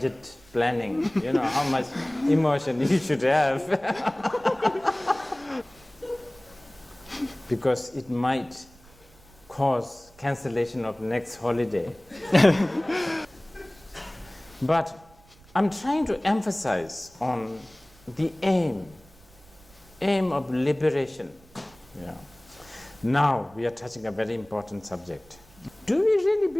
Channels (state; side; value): noise; right; rumble, 26 dB below the sound